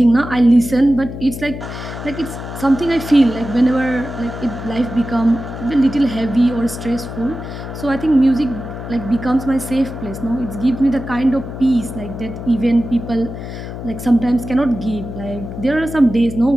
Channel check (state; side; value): noise; left; hum, 9 dB below the sound